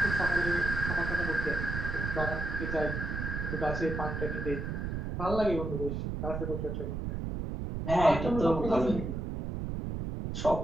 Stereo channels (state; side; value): noise; right; rumble, 3 dB below the sound